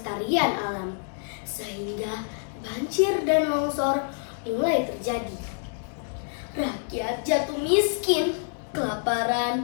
alam, sehingga banjir dan longsor mulai terjadi. Rakyat jatuh miskin, kelaparan,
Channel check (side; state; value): right; silent; digital silence